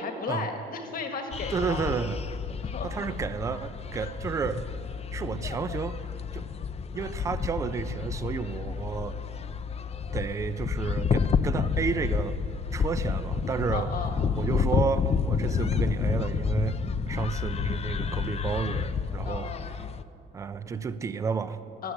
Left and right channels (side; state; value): both; normal; correlation 0.61